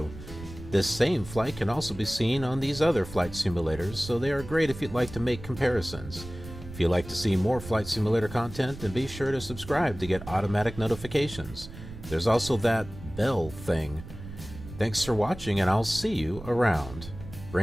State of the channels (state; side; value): noise; right; rumble, 14 dB below the sound